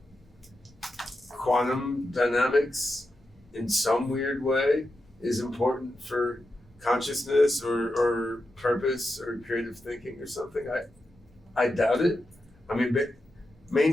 quantum dynamics in some weird way is important for consciousness or purpose or creative thinking or something. I doubt it.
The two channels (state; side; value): normal; both; correlation 0.88